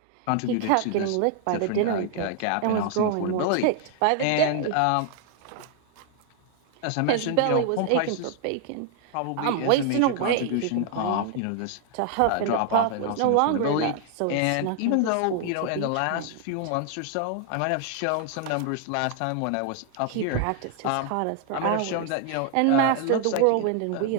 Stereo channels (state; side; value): different; both; correlation 0.00